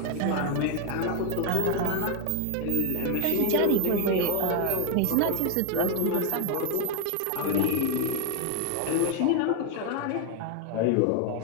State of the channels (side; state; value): both; different; correlation 0.01